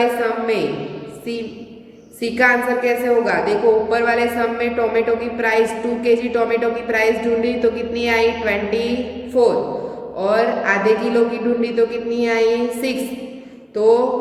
सम में सी का आंसर कैसे होगा, देखो ऊपर वाले सम में टोमेटो की प्राइस 2 kg टोमेटो की प्राइस ढूंढी तो कितनी आई 24, और आधे किलो की ढूंढी तो कितनी आई 6। तो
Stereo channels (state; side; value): identical; both; correlation 1.00